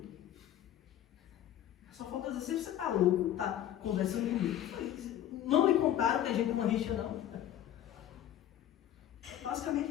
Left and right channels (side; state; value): right; quieter; 11.5 dB